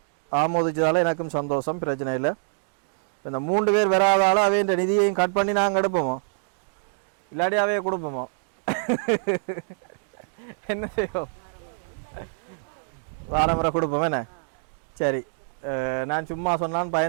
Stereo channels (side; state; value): left; silent; digital silence